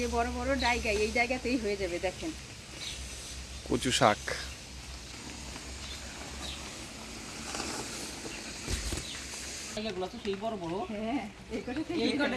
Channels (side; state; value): both; identical; correlation 1.00